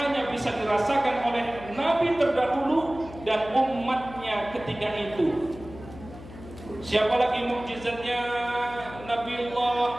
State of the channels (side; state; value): left; noise; hum, 16 dB below the sound